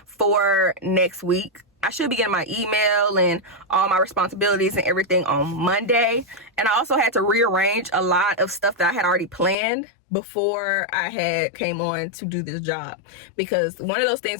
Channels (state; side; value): drops out; right; at 9.6 s